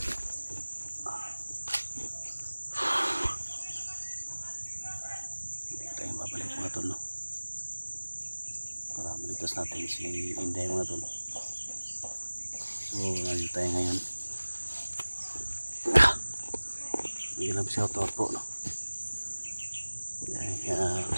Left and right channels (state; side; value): inverted; both; correlation -1.00